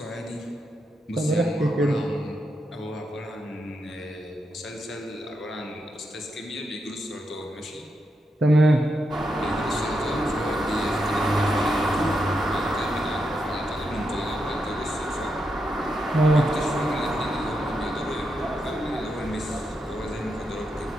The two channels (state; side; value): normal; both; correlation 0.84